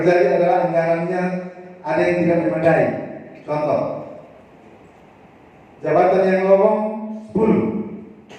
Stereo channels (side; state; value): both; identical; correlation 1.00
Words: adalah anggarannya ada yang tidak memadai. Contoh, jabatan yang lowong